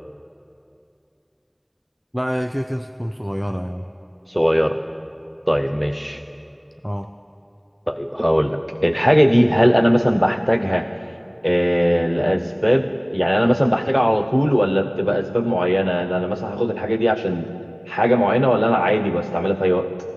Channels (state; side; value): identical; both; correlation 1.00